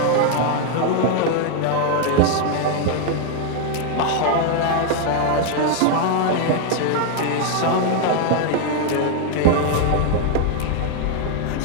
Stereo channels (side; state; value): both; different; correlation 0.00